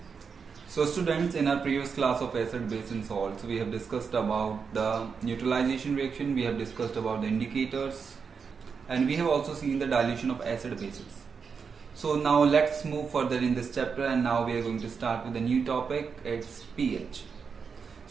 So students, in our previous class of acid-base and salts, we have discussed about the neutralization reaction, we have discussed about the indicators, and we have also seen the dilution of acid bases. So now let's move further in this chapter, and now we are going to start with a new topic, it's pH.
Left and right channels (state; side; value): quieter; left; 5.8 dB